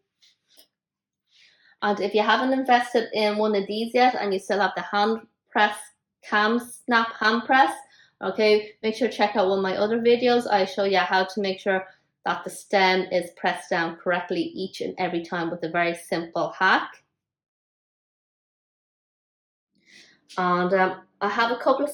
And if you haven't invested in one of these yet and you still have the hand press KAM snap hand press, okay, make sure to check out one of my other videos. I show you how to make sure that the stem is pressed down correctly each and every time with a very simple hack. And I have a couple of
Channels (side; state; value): both; identical; correlation 1.00